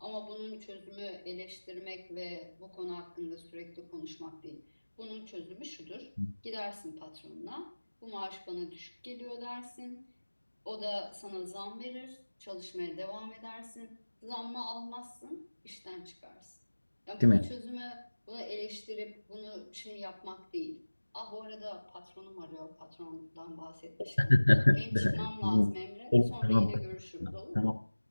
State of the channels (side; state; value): both; inverted; correlation -1.00